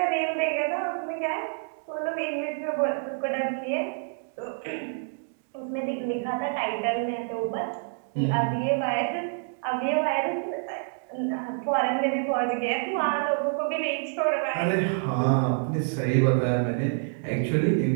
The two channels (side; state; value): left; silent; digital silence